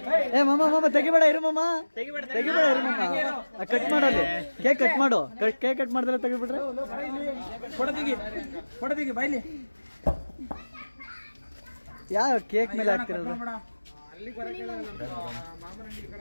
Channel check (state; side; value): inverted; both; correlation -1.00